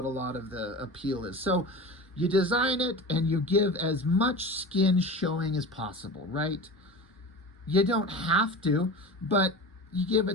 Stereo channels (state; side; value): normal; both; correlation 0.32